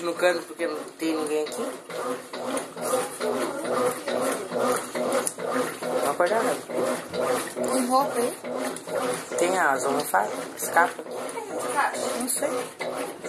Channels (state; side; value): identical; both; correlation 1.00